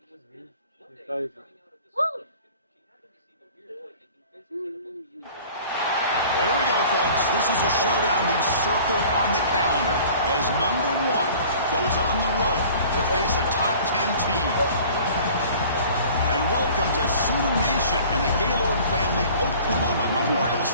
we go, folks. This is a showdown we've circled on the calendar as number 1 goes on the road to face a top 10 team. And welcome to Sioux Nation and the Gaylord family Oklahoma Memorial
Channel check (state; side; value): inverted; both; correlation -0.47